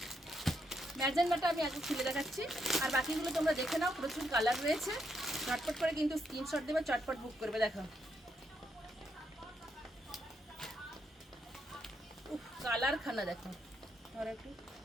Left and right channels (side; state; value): both; normal; correlation 0.78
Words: ম্যাজেন্ডাটা আমি আগে খুলে দেখাচ্ছি, আর বাকিগুলো তোমরা দেখে নাও। প্রচুর কালার রয়েছে, ঝটপট করে কিন্তু স্ক্রিনশট দেবে, চটপট বুক করবে। দেখো উফ, কালার খানা দেখো। আর একটু